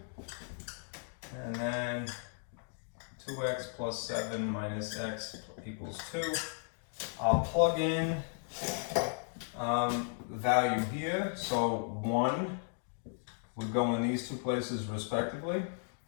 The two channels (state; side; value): silent; right; 54 dB below the other